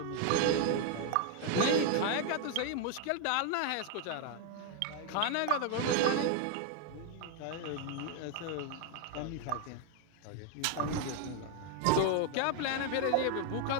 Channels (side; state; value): both; different; correlation 0.00